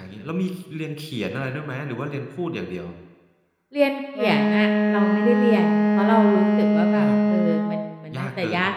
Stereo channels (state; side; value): identical; both; correlation 1.00